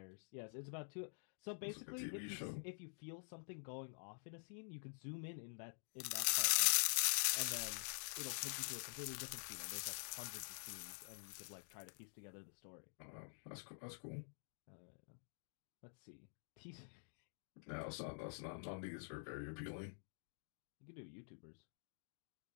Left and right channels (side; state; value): right; silent; digital silence